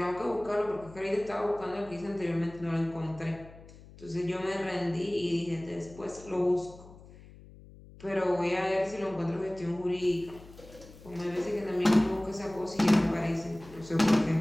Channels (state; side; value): noise; left; hum, 20 dB below the sound